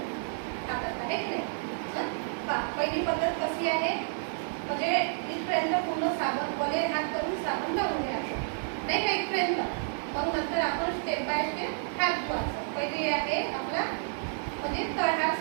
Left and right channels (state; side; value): silent; left; digital silence